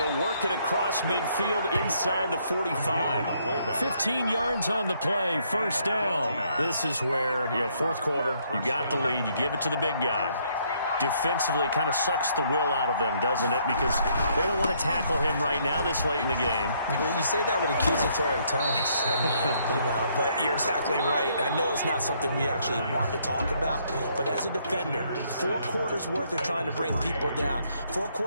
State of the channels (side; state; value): both; inverted; correlation -0.69